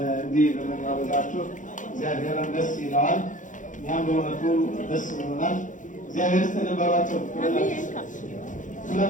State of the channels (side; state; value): right; late; 0.37 ms